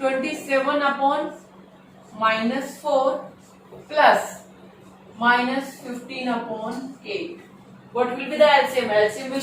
upon minus 4 plus minus 15 upon 8. What will be the LCM? LCM will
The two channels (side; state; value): both; identical; correlation 1.00